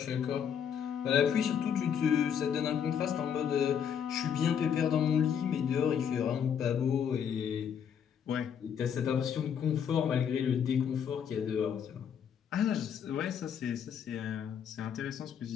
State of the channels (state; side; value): quieter; right; 8.1 dB